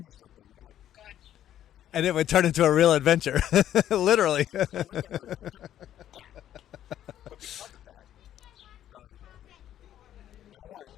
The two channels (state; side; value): quieter; right; 11.4 dB